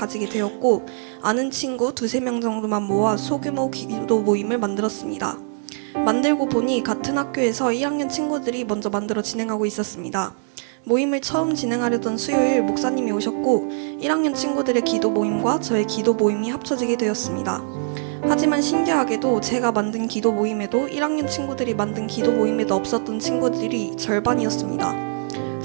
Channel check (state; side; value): silent; left; 64 dB below the other